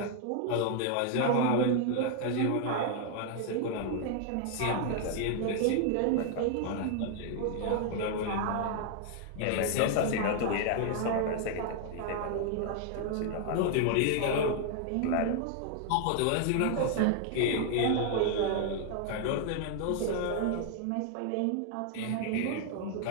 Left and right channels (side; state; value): both; different; correlation 0.00